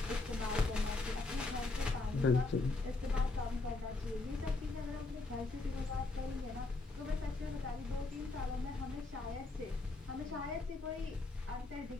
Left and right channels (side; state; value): right; quieter; 3.3 dB